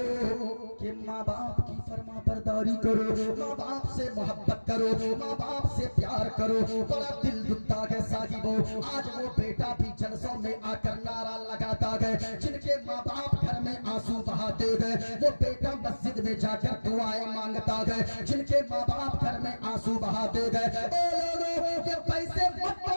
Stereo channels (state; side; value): inverted; both; correlation -1.00